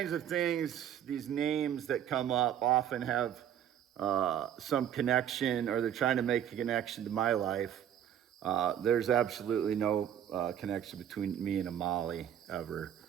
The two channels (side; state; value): left; quieter; 10.0 dB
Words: of things, these names that come up often have some connection, or they're trying to make a connection to my life. There's absolutely no connection between me and a Molly ever.